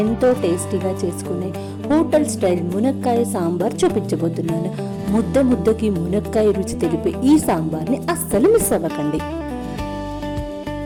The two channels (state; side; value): identical; both; correlation 1.00